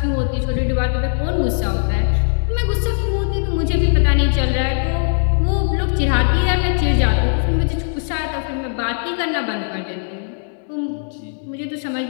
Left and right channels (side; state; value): right; silent; digital silence